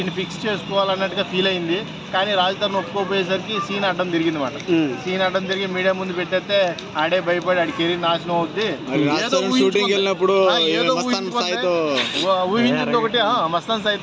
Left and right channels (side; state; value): both; identical; correlation 1.00